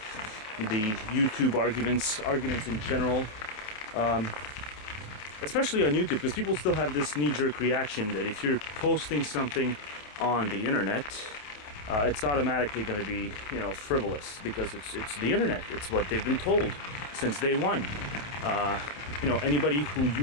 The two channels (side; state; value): right; late; 28 ms